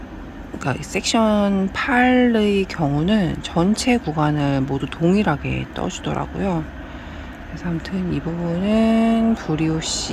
그러니까 섹션 8의 경우는 전체 구간을 모두 동일하게 떠주더라고요. 그래서 아무튼 이 부분은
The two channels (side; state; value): both; identical; correlation 1.00